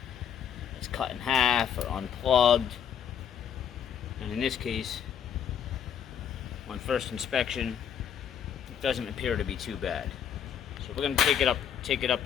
that's cut in half or unplugged. And in this case, on first inspection, it doesn't appear to be too bad. So we're going to take it up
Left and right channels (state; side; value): quieter; right; 8.7 dB